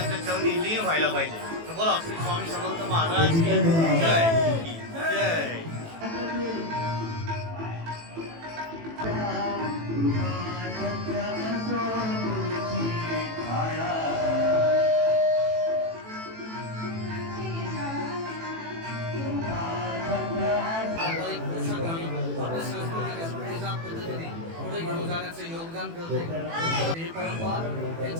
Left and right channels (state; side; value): late; left; 18 ms